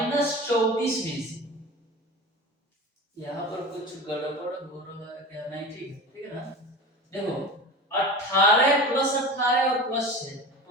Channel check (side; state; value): both; normal; correlation 0.32